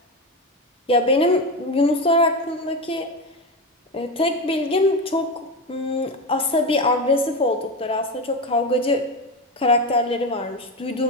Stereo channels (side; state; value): both; normal; correlation 0.18